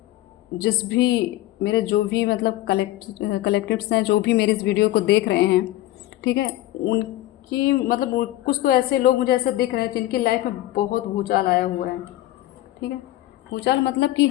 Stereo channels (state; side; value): quieter; right; 15.7 dB